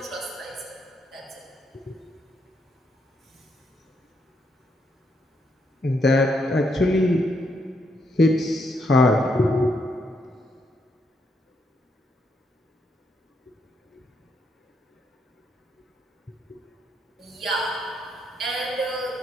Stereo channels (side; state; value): both; normal; correlation 0.76